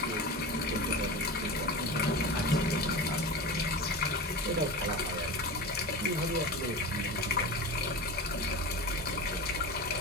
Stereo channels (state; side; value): normal; both; correlation 0.28